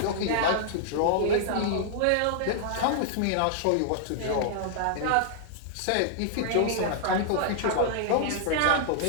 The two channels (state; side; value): different; both; correlation -0.01